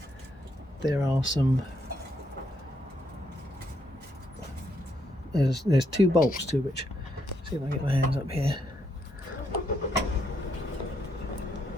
there are some, there's two bolts to which, see if I can get my hands up here.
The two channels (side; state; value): both; normal; correlation 0.76